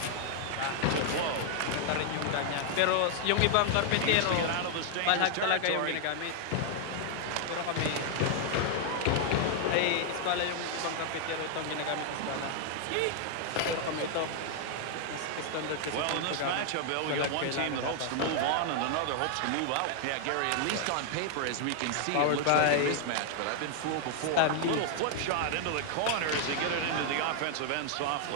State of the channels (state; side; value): different; both; correlation 0.00